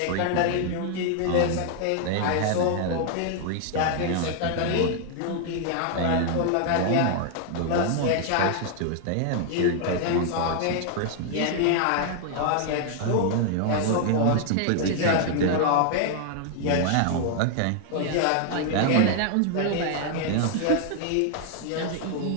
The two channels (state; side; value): different; both; correlation 0.00